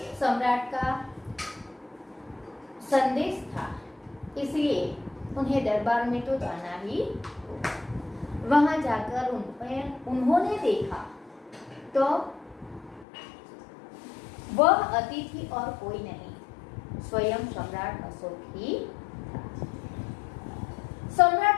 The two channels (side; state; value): right; drops out; at 13.1 s